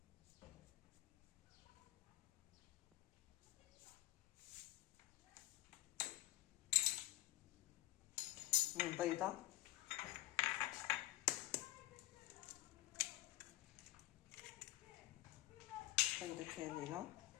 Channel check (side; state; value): right; quieter; 17.1 dB